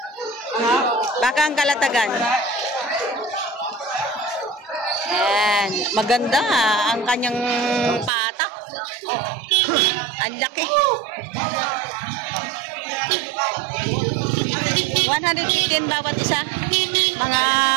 Baka ang Kalatagan. Ayan. Maganda ang kanyang patak. Ang laki. 115 bawat isa. Mga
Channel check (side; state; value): left; drops out; at 8.1 s